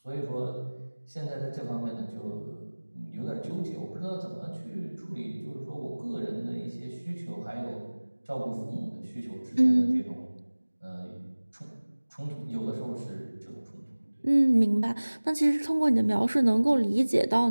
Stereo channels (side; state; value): both; inverted; correlation -1.00